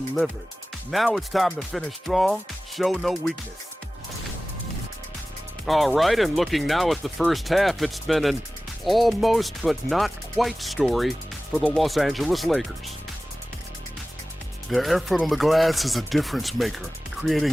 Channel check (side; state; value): both; normal; correlation 0.97